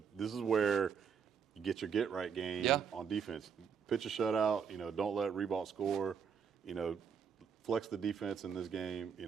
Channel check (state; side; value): quieter; left; 6.8 dB